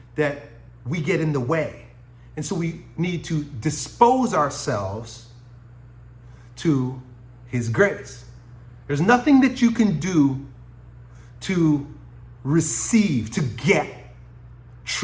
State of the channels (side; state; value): both; identical; correlation 1.00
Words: that we get in the way. And so we need to dispose ourselves to his grace. There's nothing that you can do to receive, to get